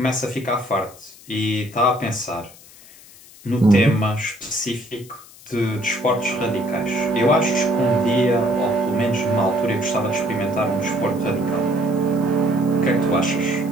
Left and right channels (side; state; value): left; noise; hiss, 22 dB below the sound